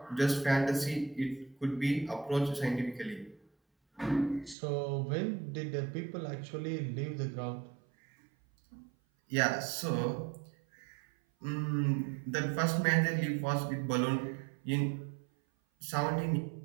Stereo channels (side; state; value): left; drops out; at 4.5 s